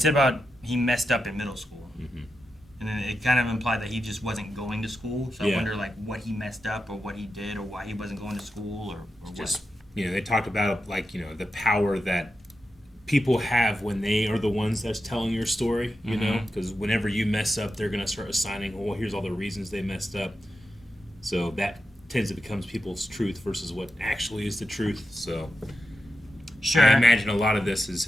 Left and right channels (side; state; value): both; normal; correlation 0.89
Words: about he messed up in middle school. And then it kind of implied that he just wasn't going to school. So I wonder, like, what he messed up or what he did or why he wasn't going to school or Just, they talked about, like, the power that people have when they are the ones that's telling your story, you know? Because whenever you mess up, they're going to start assigning, well, here's all the reasons they messed up. So that tends to become people's truth versus what actually is the truth. So Sure. I imagine a lot of this is